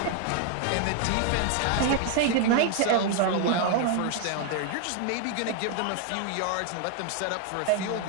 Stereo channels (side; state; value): both; different; correlation 0.00